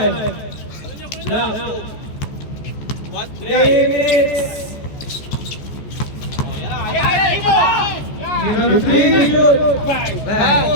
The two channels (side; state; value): right; late; 14 ms